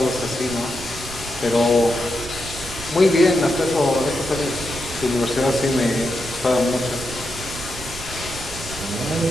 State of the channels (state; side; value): noise; right; rumble, 13 dB below the sound